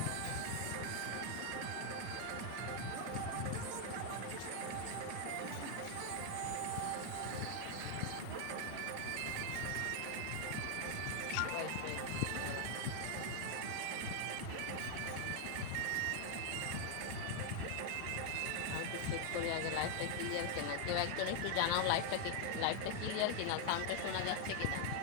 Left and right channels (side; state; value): both; different; correlation 0.00